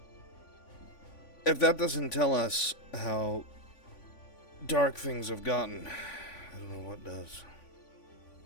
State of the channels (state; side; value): late; right; 3.5 ms